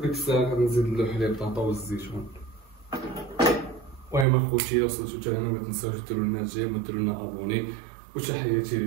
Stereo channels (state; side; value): drops out; left; at 4.2 s